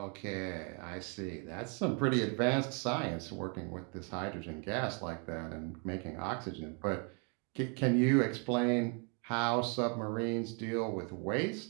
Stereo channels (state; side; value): quieter; left; 36.9 dB